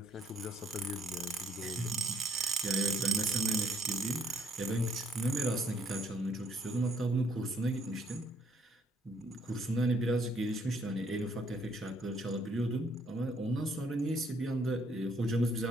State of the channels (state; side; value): normal; both; correlation 0.68